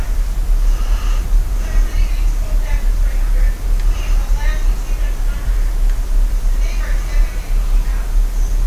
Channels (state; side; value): identical; both; correlation 1.00